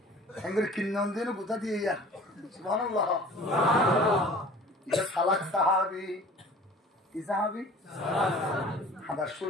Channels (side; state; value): both; normal; correlation 0.45